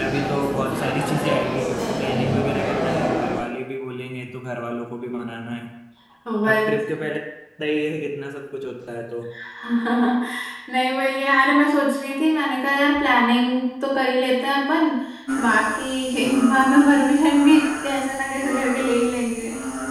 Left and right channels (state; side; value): identical; both; correlation 1.00